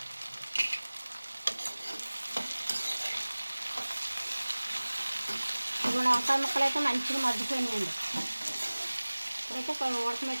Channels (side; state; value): both; inverted; correlation -1.00